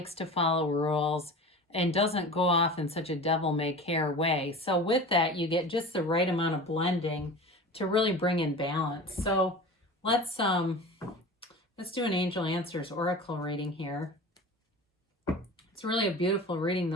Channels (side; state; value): both; normal; correlation 0.35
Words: to follow rules, and doesn't go off in such a devil-may-care way. So with that, you get just the right amount of blending to really bring in balance. So let's do an Angel Answers Oracle reading here. It's really a beautiful reading